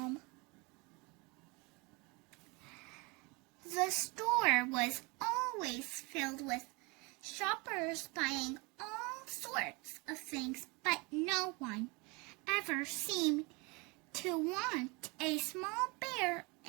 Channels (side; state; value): left; quieter; 27.8 dB